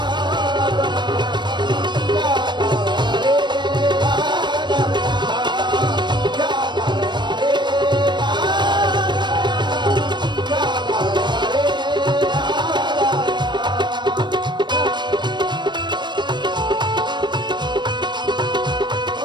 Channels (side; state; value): left; late; 0.22 ms